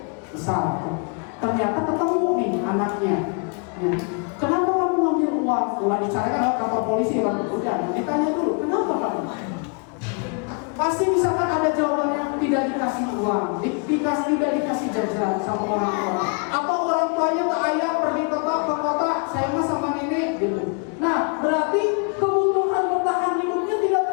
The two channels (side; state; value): right; quieter; 37.2 dB